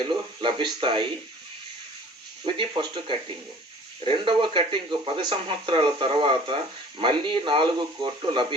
లభిస్తాయి. ఇది ఫస్ట్ కటింగ్. రెండవ కటింగ్ 10 సంవత్సరాల తర్వాత మళ్ళీ 4 కోట్లు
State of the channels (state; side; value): normal; both; correlation 0.48